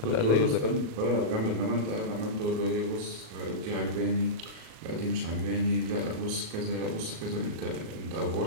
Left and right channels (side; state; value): left; late; 37 ms